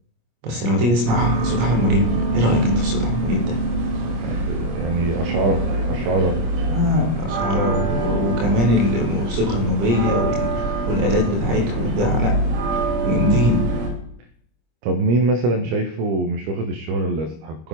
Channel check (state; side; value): late; left; 25 ms